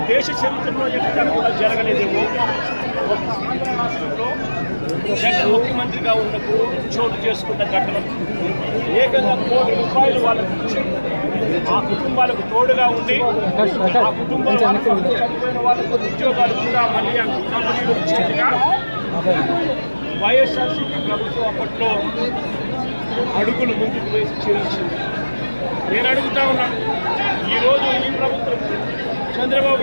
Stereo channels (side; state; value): both; inverted; correlation -1.00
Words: దేశ చరిత్రలో ఎక్కడ కూడా జరగలేదేమో. రాష్ట్రంలో జగన్ ముఖ్యమంత్రిగా ఉన్నప్పుడు చోటు చేసుకున్న ఘటన ఏకంగా ₹1 కోటి వాళ్ళకి ఇచ్చి ఆ కుటుంబాలకు తోడుగా ఉండి ఆ కుటుంబంలో చనిపోయిన వాళ్ళకు ఉద్యోగాలు కూడా మళ్ళీ ఆ కంపెనీలు ఇచ్చేట్టుగా వైఎస్ఆర్సీపీ ప్రభుత్వం అప్పట్లో అడుగులు ముందుకు వేసి చేయించింది. నేను అడుగుతా ఉన్నా, ఈరోజు ఈ ప్రభుత్వం చంద్రబాబు